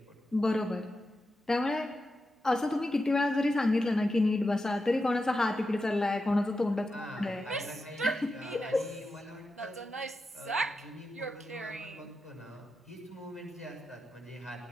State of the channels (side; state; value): both; normal; correlation 0.89